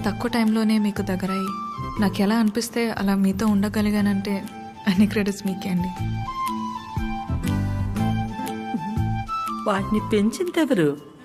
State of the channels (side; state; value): both; identical; correlation 1.00